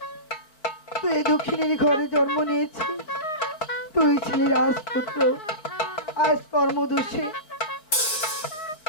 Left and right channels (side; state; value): right; late; 4.7 ms